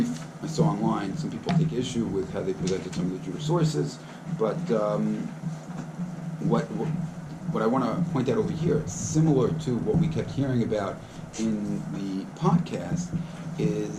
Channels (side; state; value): both; identical; correlation 1.00